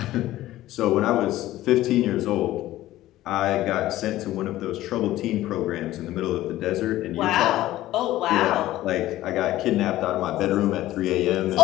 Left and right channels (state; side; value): quieter; right; 15.2 dB